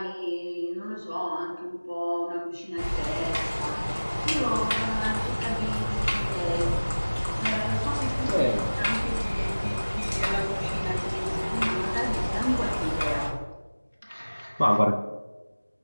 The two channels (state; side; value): inverted; both; correlation -1.00